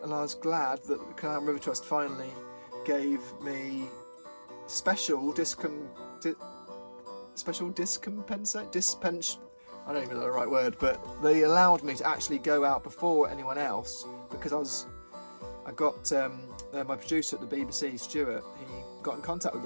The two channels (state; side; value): inverted; both; correlation -1.00